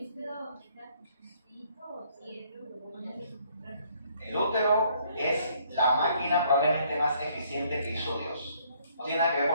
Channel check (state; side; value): inverted; both; correlation -0.65